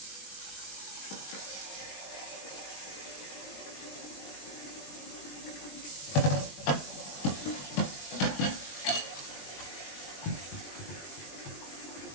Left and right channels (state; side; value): late; right; 21 ms